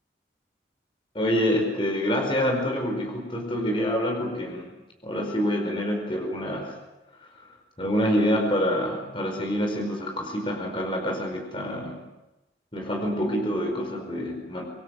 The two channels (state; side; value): normal; both; correlation 0.56